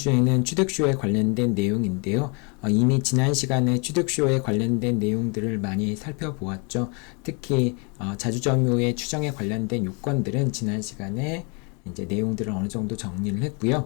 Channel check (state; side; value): quieter; right; 33.8 dB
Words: 취득쇼에 관련된 내용인데요. 이미 지난 시간에 취득쇼에 관련된 내용들을 많이 살펴보았죠. 특히 자주점유의 추정에 관련된 요건들은 지난 시간에 이제 내용들을 어느 정도 정리를 했고요.